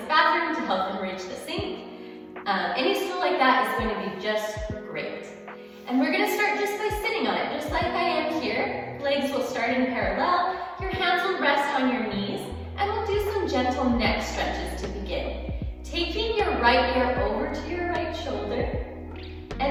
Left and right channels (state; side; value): identical; both; correlation 1.00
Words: bathroom to help them reach the sink. Any stool like that is going to be just great. And we're going to start just by sitting on it, just like I am here. Legs will start in parallel. Your hands will rest on your knees, and we'll do some gentle neck stretches to begin. Taking your right ear over to your right shoulder,